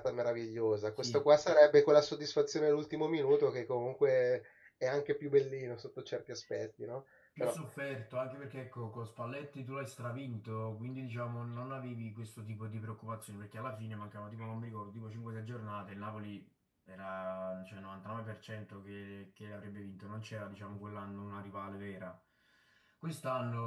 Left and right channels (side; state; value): both; identical; correlation 1.00